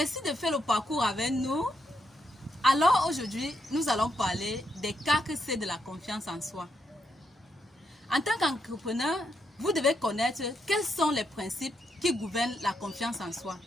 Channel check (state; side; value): normal; both; correlation 0.79